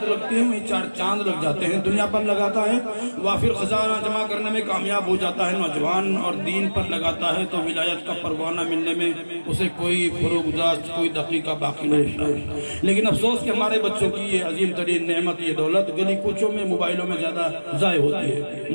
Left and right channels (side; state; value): both; inverted; correlation -1.00